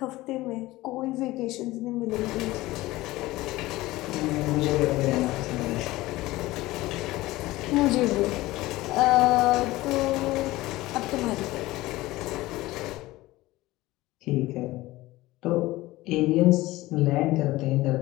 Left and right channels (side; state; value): right; quieter; 18.4 dB